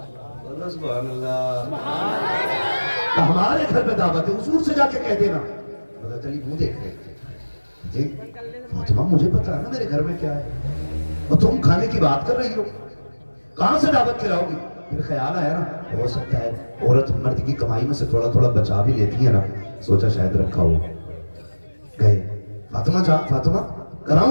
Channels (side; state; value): both; inverted; correlation -1.00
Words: سبحان اللہ ہمارے گھر پہ دعوت ہے حضور سے جا کے کہہ دینا حضرت علی منہ دیکھ رہے فاطمہ مجھے پتا ہے نا میرے گھر میں کیا ہے اور تم کھانے کی بات کر رہی ہو کہاں سے دعوت کھلاؤ گی پھر خیال آیا نا ہو سکتا ہے عورت مرد کی کمائی میں سے تھوڑا تھوڑا بچا بھی لیتی ہے نا سوچا شاید رکھا ہو گئے فاطمہ